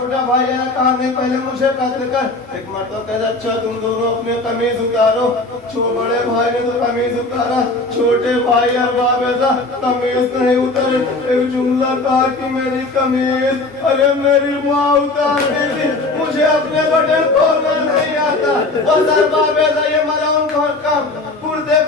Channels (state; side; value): quieter; right; 3.1 dB